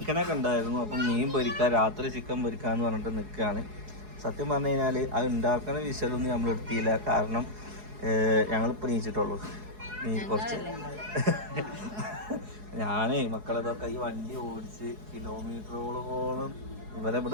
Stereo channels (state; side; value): late; left; 4.8 ms